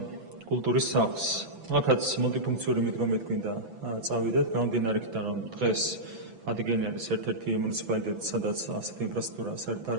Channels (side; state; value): left; late; 6.0 ms